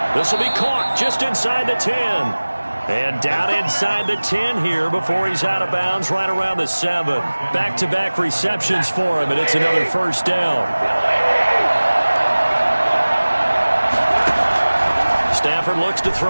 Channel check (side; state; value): both; inverted; correlation -1.00